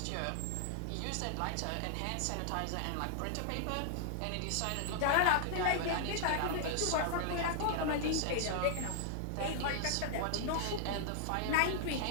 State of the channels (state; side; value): different; both; correlation -0.01